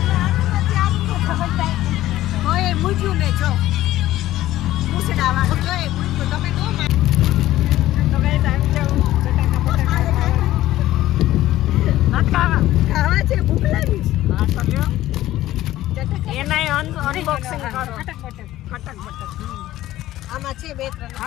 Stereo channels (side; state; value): right; quieter; 14.8 dB